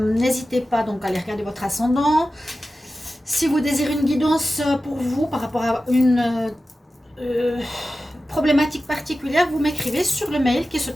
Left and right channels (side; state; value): both; normal; correlation 0.94